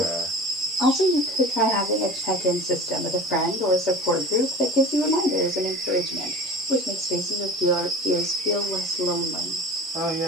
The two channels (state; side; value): normal; both; correlation 0.37